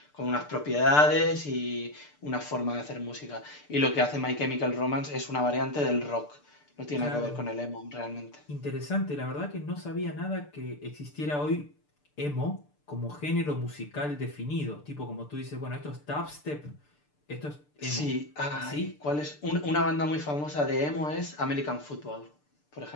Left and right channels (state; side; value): late; right; 6.8 ms